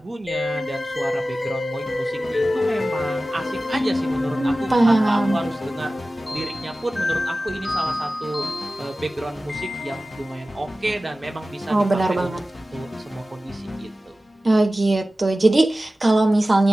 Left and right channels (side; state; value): both; normal; correlation 0.96